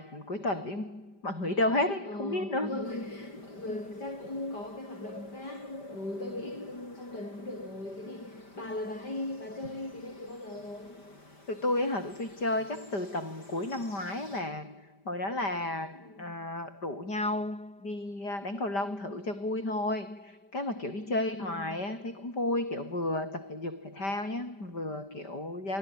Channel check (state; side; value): late; right; 5.1 ms